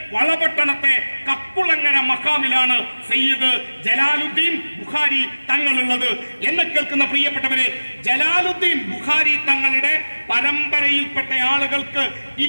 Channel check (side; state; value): both; inverted; correlation -1.00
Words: വളപട്ടണത്തെ കക്കുളങ്ങര മഖാമിലാണ് സയ്യിദ് ജലാലുദ്ദീൻ ബുഖാരി തങ്ങളുള്ളത്. എന്നെ കേൾക്കുന്ന പ്രിയപ്പെട്ടവരെ, ജലാലുദ്ദീൻ ബുഖാരി തങ്ങളുടെ പരമ്പരയിൽപ്പെട്ട ആളുകൾക്ക്